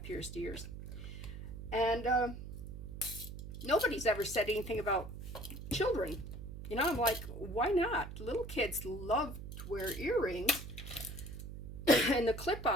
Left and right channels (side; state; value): right; noise; hum, 10 dB below the sound